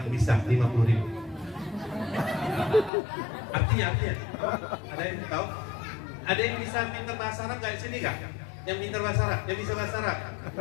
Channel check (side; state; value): right; drops out; at 2.9 s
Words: bisa 50.000. Artinya ada yang tahu? Ada yang bisa pintar bahasa Arab enggak di sini enggak? Yang pintar bahasa Arab, yang bisa bahasa Arab.